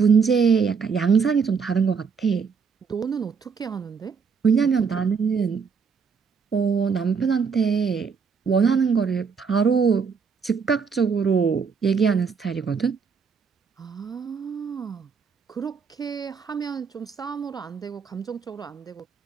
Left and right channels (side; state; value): left; quieter; 5.8 dB